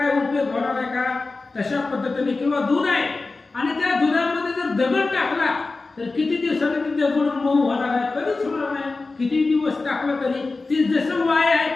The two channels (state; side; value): quieter; right; 3.6 dB